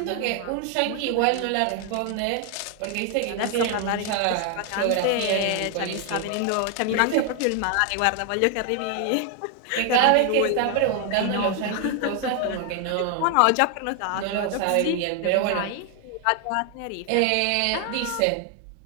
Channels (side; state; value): both; different; correlation 0.00